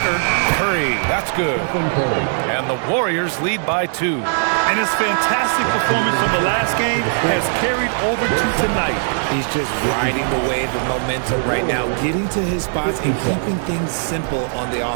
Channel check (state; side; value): silent; left; 66 dB below the other